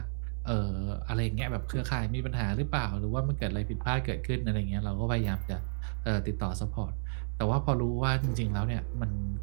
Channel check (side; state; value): left; silent; 57 dB below the other